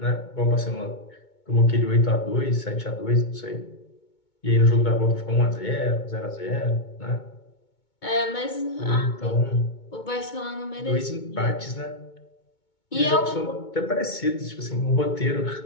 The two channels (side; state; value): right; late; 2.2 ms